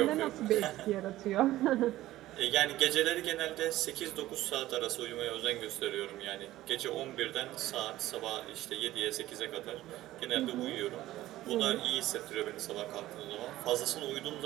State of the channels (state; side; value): quieter; left; 15.5 dB